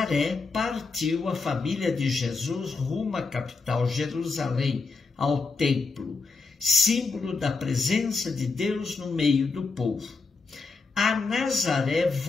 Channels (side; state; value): right; quieter; 4.2 dB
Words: partiu a família de Jesus rumo à capital Jerusalém, ao templo, símbolo da presença de Deus no meio do povo. A Nazaré